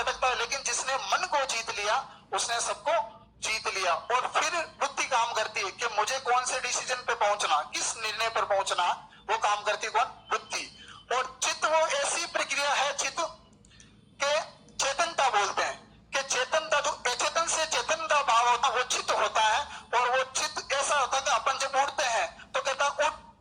है, लेकिन जिसने मन को जीत लिया उसने सबको जीत लिया। और फिर बुद्धि काम करती है कि मुझे कौन से डिसीजन पे पहुंचना, किस निर्णय पर पहुंचना, वो काम करती है कौन? बुद्धि। और चित्त वो ऐसी प्रक्रिया है, चित्त के चेतनता बोलते हैं कि चेतनता जो अचेतन से चेतन का भाव होता है वो चित्त होता है। और वो चित्त ऐसा होता है कि अपन जब उठते हैं तो कहता उठ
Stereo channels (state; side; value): identical; both; correlation 1.00